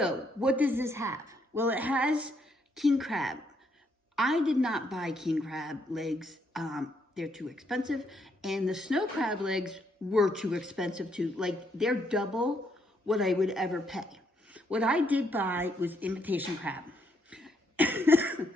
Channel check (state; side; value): normal; both; correlation 0.74